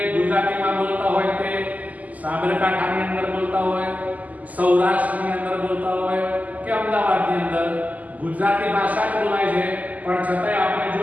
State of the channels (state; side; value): late; left; 0.077 ms